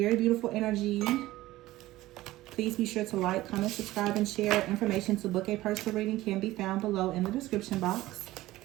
beautiful energy. Please be sure to like, comment, subscribe, and share. Information to book a personal reading can be found below in the description box.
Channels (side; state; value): left; quieter; 16.8 dB